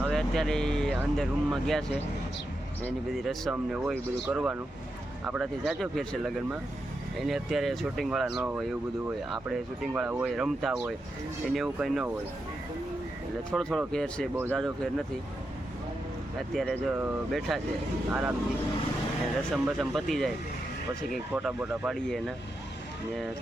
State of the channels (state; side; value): normal; both; correlation 0.86